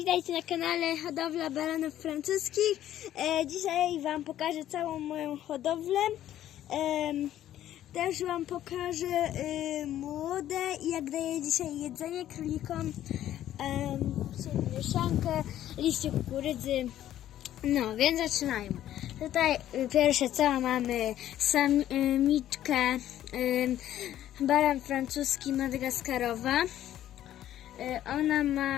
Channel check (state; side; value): quieter; right; 12.2 dB